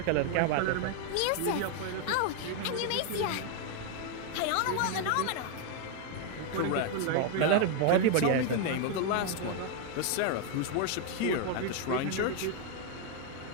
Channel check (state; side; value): different; both; correlation 0.01